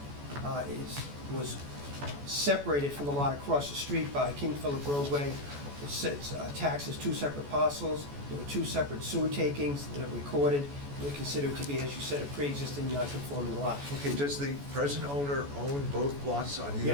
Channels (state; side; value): late; left; 14 ms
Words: was separated from the lot across the street by King Philip Roadway. It's taxed as two separate parcels. There were two separate sewer takings that are recorded. They're considered to be, as you said, a pre-existing non-conforming lot. Okay, does the present owner own both lots on either